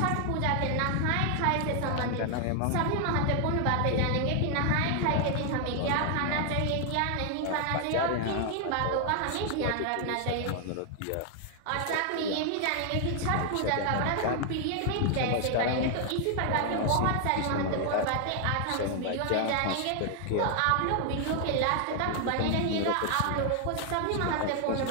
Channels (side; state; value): both; different; correlation 0.00